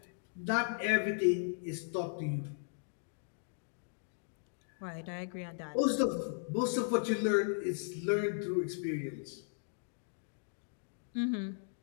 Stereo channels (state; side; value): silent; right; digital silence